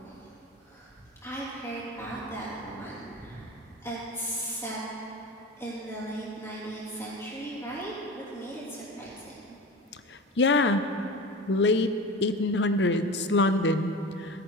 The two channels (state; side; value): normal; both; correlation 0.30